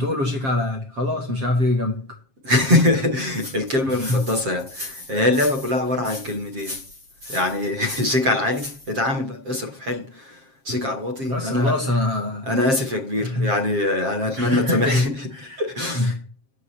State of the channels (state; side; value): late; left; 7.5 ms